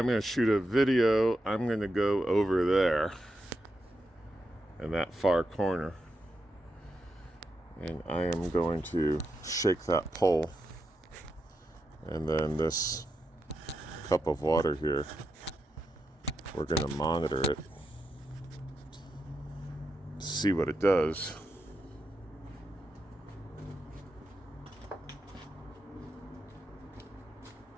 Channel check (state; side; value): normal; both; correlation 0.86